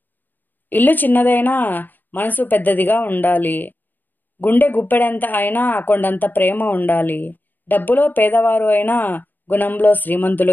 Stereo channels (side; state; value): right; late; 0.090 ms